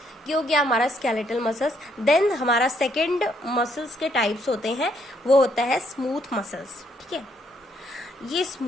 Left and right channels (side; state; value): both; normal; correlation 0.71